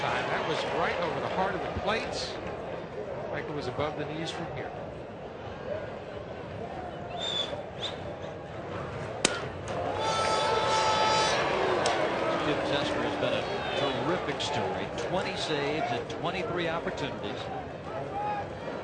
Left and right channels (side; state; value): both; identical; correlation 1.00